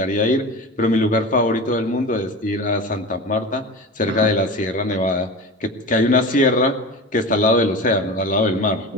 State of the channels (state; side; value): normal; both; correlation 0.30